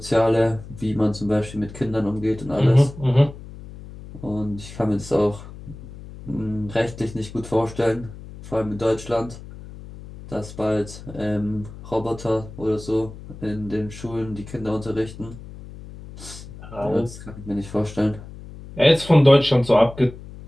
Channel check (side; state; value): left; noise; hum, 15 dB below the sound